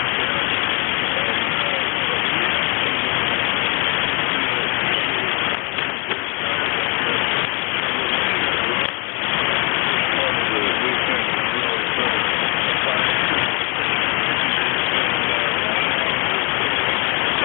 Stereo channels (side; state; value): right; quieter; 33.3 dB